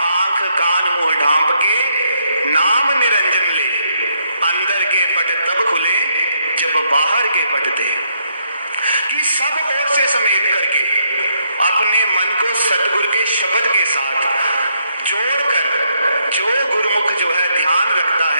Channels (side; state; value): both; inverted; correlation -0.74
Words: आंख कान मुंह ढांप के नाम निरंजन ले, अंदर के पट तब खुले जब बाहर के पट दे। कि सब ओर से समेट करके अपने मन को सतगुरु के शब्द के साथ जोड़कर जो गुरुमुख जो है ध्यान रखता